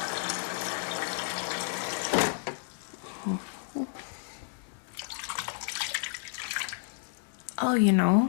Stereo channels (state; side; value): silent; right; digital silence